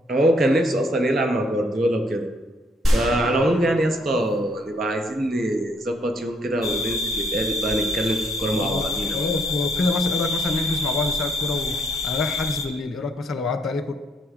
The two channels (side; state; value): both; normal; correlation 0.68